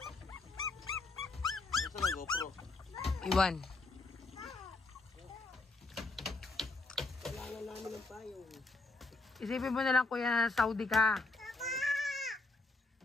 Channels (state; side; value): quieter; right; 3.3 dB